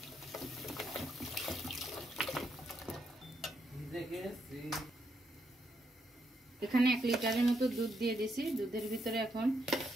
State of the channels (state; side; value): normal; both; correlation 0.79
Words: এখানে 1 লিটারের মতো দুধ দিয়ে দিয়েছি। দুধের ভিতরে এখন